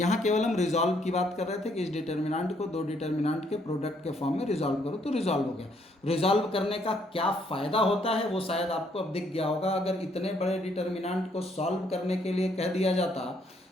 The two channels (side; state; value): both; normal; correlation 0.69